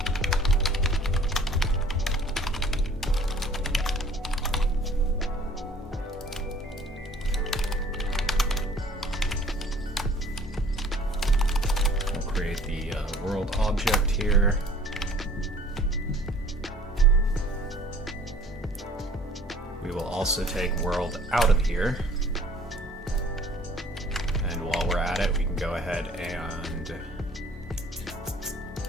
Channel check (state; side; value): normal; both; correlation 0.52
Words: Create the world object here. We will also take world out of here. And while we're at it, we can go ahead and